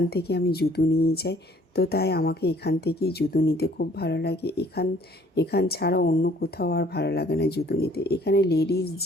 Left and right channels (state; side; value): normal; both; correlation 0.58